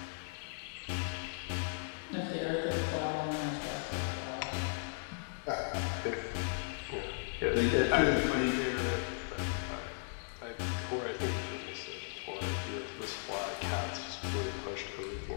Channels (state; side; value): silent; right; digital silence